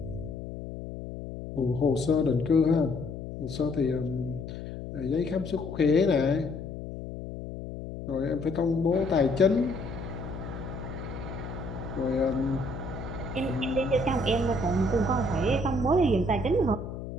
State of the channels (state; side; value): noise; left; hum, 9 dB below the sound